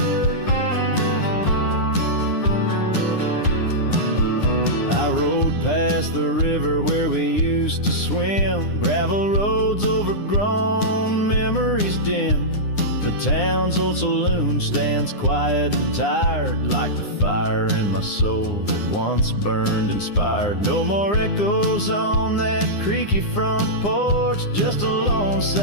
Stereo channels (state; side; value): late; right; 9.8 ms